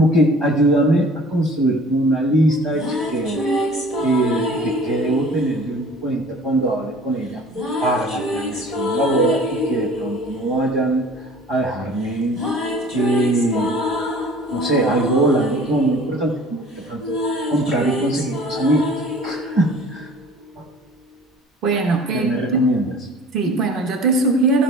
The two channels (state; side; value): normal; both; correlation 0.47